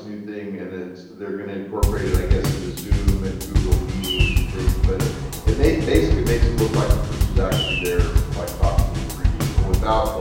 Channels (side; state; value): both; identical; correlation 1.00